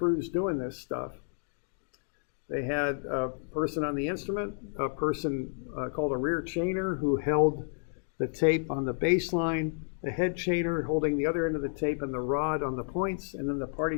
doing this stuff. They had a person on the instrument, a person called a rear chainer who held the tape on the baseline, the head chainer holding the other end of the tape and the rod on the points, and then the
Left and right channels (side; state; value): right; silent; 57 dB below the other